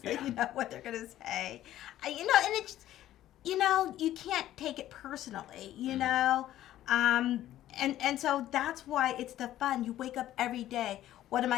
So you know what they're going to say. And it's, you can't take it personally, And so that's why it's the fun. You wake up every day. What am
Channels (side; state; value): right; quieter; 13.2 dB